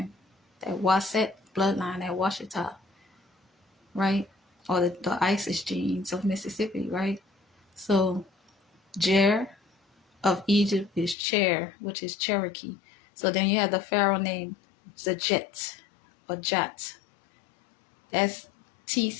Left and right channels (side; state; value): right; drops out; at 11.2 s